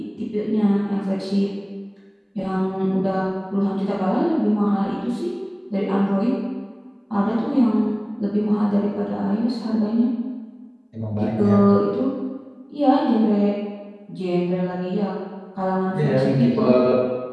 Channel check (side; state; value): both; identical; correlation 1.00